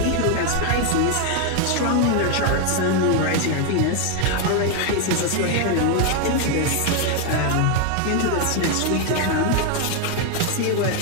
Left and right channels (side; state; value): both; different; correlation 0.01